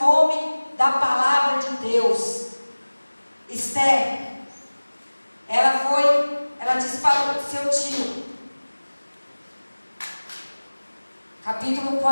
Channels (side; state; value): both; inverted; correlation -1.00